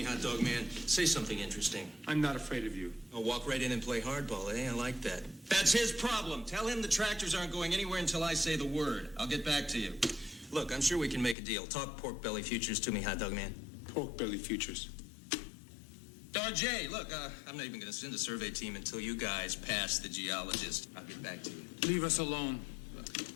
hot dog man. Say something interesting. I'm not afraid of you. I'll walk right in and play hardball, eh? I like that. That's his problem. Tell him the tractors aren't going anywhere until I say the word. I'll get back to you. Look, I'm sure we can make a deal. Talk pork belly futures to me, hot dog man. Pork belly futures. Jay, look, I'm not even going to send a survey team until you guys pass the geologist. I'll get back to you. Leave us alone.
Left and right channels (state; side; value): drops out; right; at 11.4 s